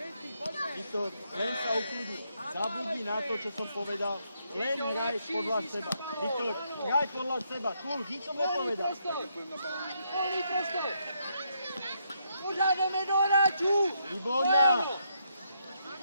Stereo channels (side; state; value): both; inverted; correlation -0.77